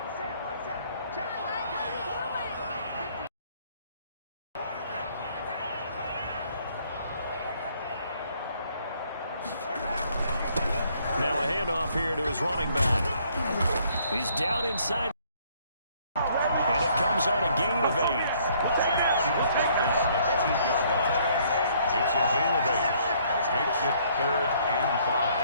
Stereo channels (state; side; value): inverted; both; correlation -0.64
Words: his running back. He's down inside. And it comes on a gain of 8. He was brought down at the 8-yard line. It's a gain of 8. Makes it 3rd and